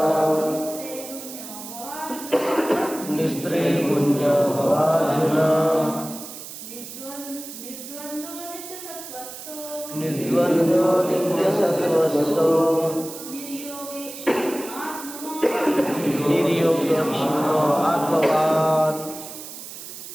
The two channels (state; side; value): noise; right; hiss, 12 dB below the sound